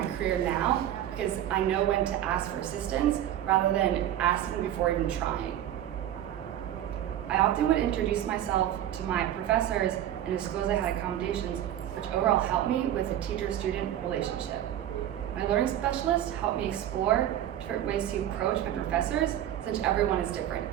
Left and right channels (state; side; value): quieter; left; 11.6 dB